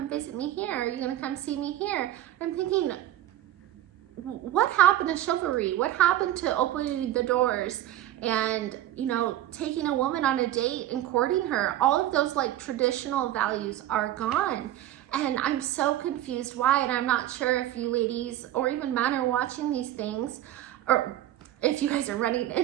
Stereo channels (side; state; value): left; quieter; 13.3 dB